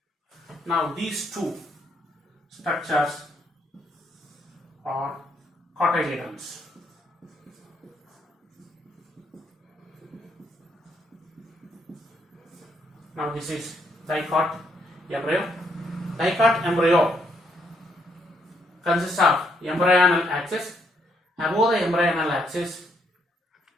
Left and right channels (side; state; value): both; normal; correlation 0.73